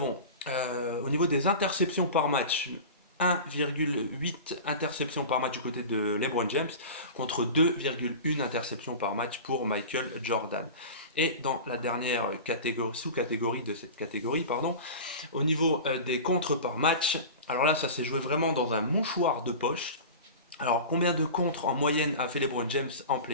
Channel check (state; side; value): inverted; both; correlation -0.32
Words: au niveau des interceptions par match, 1,8 interceptions par match du côté de LeBron James contre 2,1 interceptions par match pour Michael Jordan. Et dans la dernière sous-catégorie de cette catégorie, au niveau des contres par match, alors là ça s'est joué vraiment dans un mouchoir de poche. Alors combien de contres en moyenne a fait LeBron James en